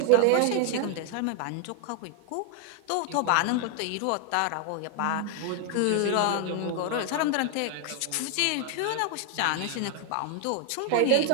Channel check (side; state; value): both; different; correlation 0.00